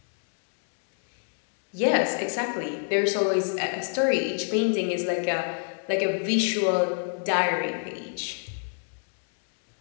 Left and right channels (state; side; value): silent; right; 60 dB below the other